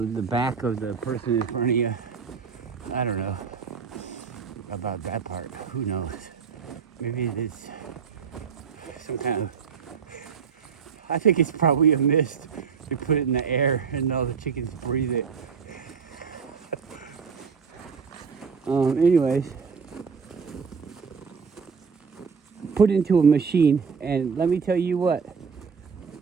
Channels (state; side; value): quieter; left; 6.0 dB